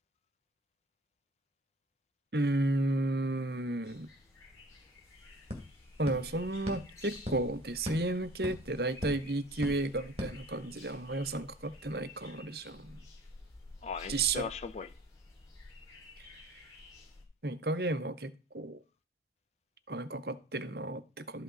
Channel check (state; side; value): normal; both; correlation 0.49